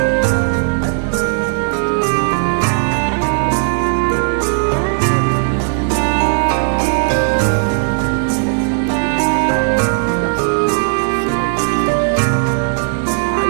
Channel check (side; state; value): left; silent; digital silence